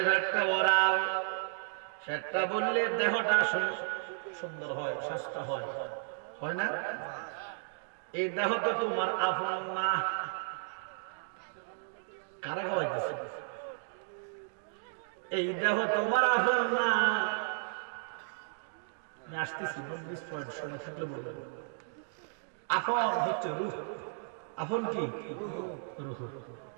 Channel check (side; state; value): left; silent; digital silence